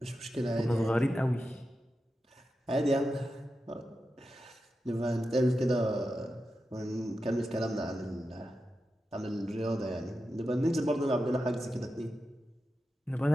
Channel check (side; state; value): both; normal; correlation 0.90